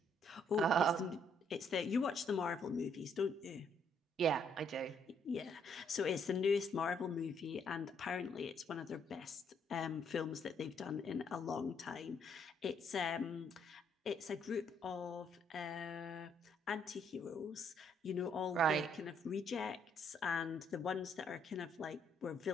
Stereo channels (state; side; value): normal; both; correlation 0.69